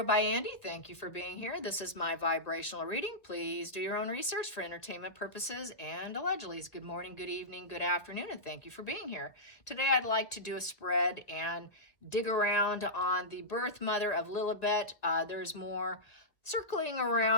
by Andy. Thank you for being here. This is my vibrational reading. Please do your own research for entertainment purposes and allegedly. Good morning, good evening, good afternoon, and thank you for being here. Today I'd like to do a spread and dig around on the birth mother of Lilibet. There's more circling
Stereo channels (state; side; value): late; right; 1.7 ms